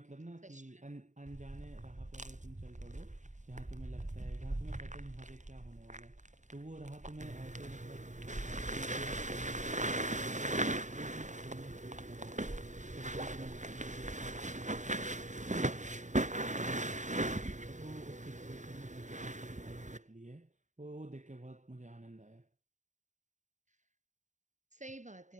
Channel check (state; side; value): late; left; 0.35 ms